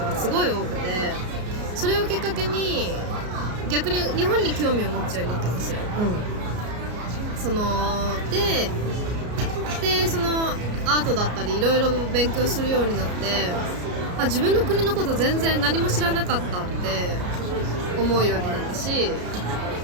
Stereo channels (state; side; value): late; left; 33 ms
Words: がすごい多くて、それをきっかけに逆に日本に興味を持つようになったんですよ。でそのアートだったりいろいろ勉強するようになって、自分の国のこと全然何も知らなかったって思うようになったし、